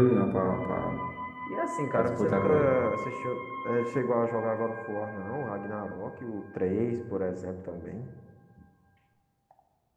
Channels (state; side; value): identical; both; correlation 1.00